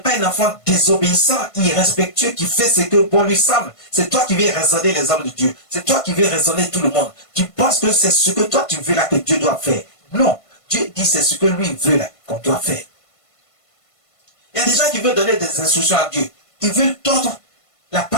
un enfant désobéissant, irrespectueux, qui fait ce que bon lui semble. C'est toi qui veux raisonner les hommes de Dieu. C'est toi qui veux raisonner tout le monde. Tu penses que c'est ce que toi tu veux là que Dieu doit faire. Non. Dieu dit c'est ce que lui veut là qu'on doit faire. Il y a des gens qui veulent donner des instructions à Dieu. Ils veulent tordre la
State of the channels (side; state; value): right; late; 1.5 ms